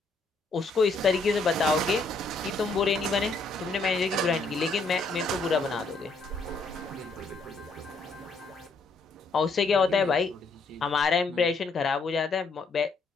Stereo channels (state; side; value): quieter; right; 3.6 dB